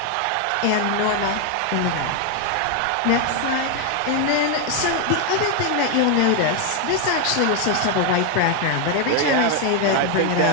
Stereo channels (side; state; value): both; different; correlation 0.01